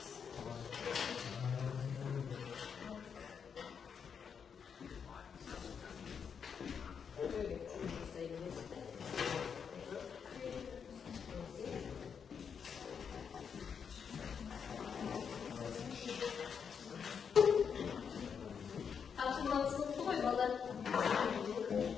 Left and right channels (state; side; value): quieter; right; 6.8 dB